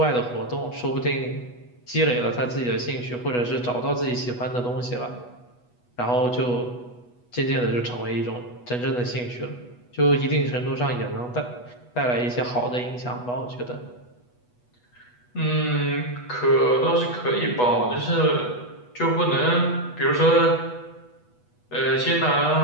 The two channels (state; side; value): late; right; 8.2 ms